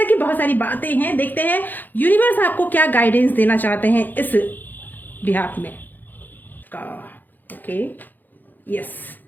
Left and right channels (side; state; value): right; late; 0.087 ms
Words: की बहुत सारी बातें हैं। देखते हैं यूनिवर्स आपको क्या गाइडेंस देना चाहते हैं इस बिहाफ में का। Okay, yes,